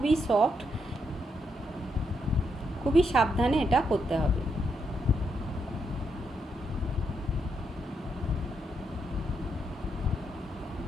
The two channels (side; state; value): both; normal; correlation 0.79